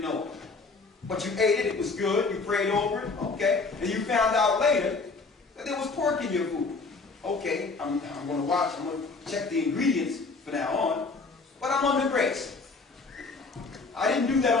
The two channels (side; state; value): right; quieter; 4.1 dB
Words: know it. But you ate it, it was good, you prayed over it, okay. And you found out later that there was pork in your food. Okay, I'm going to watch, I'm going to check the ingredients from now on, but I'm under grace. I didn't do